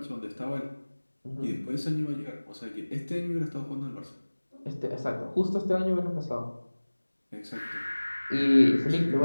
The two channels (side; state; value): both; inverted; correlation -1.00